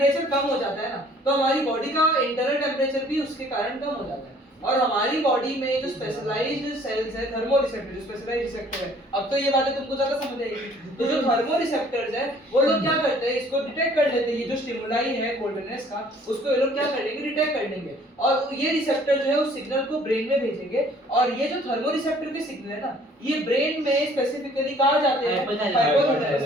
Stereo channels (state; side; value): normal; both; correlation 0.56